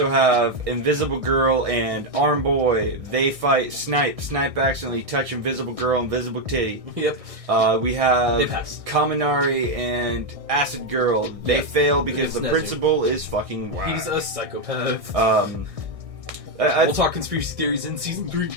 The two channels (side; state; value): left; late; 1.6 ms